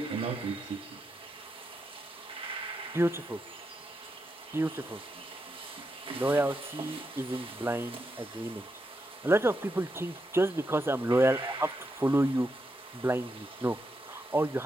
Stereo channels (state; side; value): normal; both; correlation 0.84